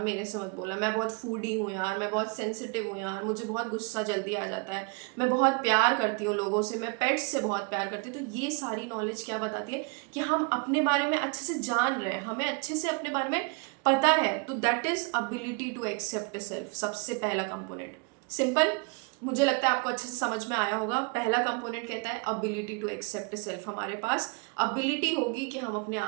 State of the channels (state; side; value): quieter; left; 33.0 dB